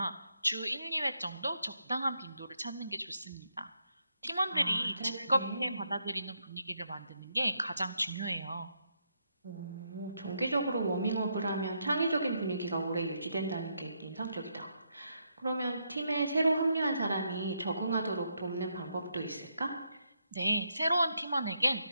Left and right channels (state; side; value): inverted; both; correlation -0.79